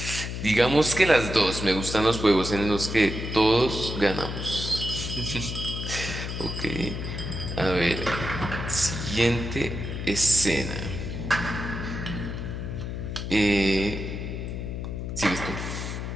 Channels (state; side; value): noise; left; hum, 5 dB below the sound